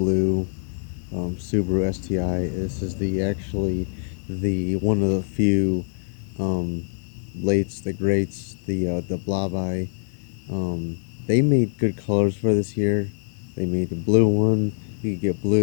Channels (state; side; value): silent; right; 58 dB below the other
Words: Subaru STI. This is the one of the few um, lates, the greats, the Blabai. Um, they made good colors for this year. They made the blue one. You could get